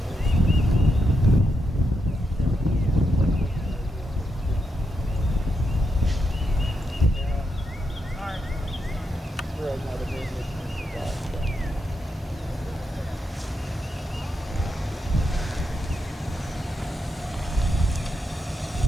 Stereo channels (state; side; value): normal; both; correlation 0.83